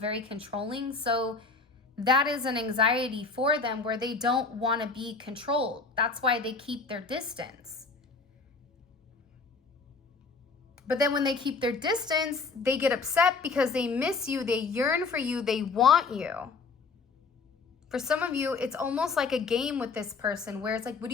controlling. So that is an anxiety for them where they don't want to be controlled. That's why they keep their distance. But then when they keep their distance, they get upset because they miss you, they yearn for you, they want you. For some of you, it's almost like a game with this person where it's like, what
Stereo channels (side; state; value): right; quieter; 4.4 dB